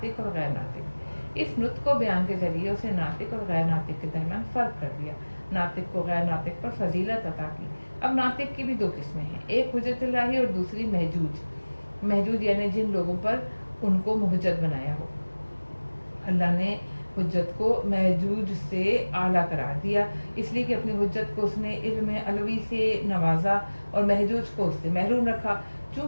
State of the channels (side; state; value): both; inverted; correlation -1.00